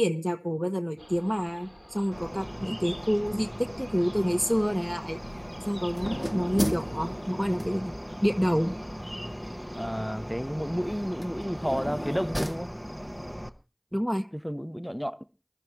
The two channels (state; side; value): identical; both; correlation 1.00